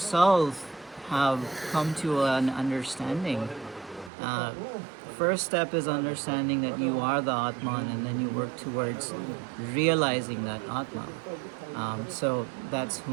have come to an understanding, uh, first step is understanding that you are the Atman, and then you work towards realizing that Atma. So that's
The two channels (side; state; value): left; drops out; at 4.1 s